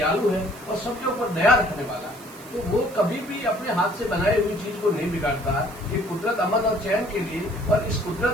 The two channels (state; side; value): noise; right; hiss, 20 dB below the sound